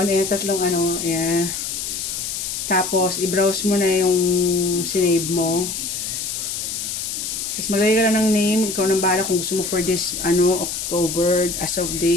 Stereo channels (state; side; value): noise; left; hiss, 4 dB below the sound